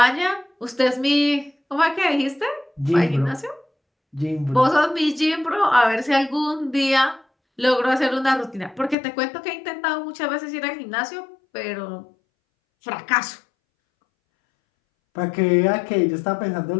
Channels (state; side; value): drops out; right; at 9.0 s